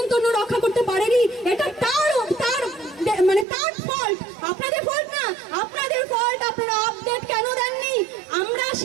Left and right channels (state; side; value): drops out; left; at 3.5 s